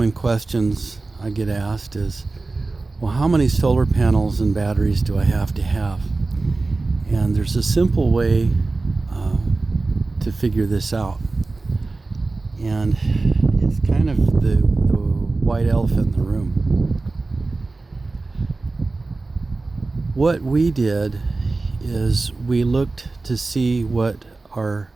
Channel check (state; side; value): quieter; left; 3.5 dB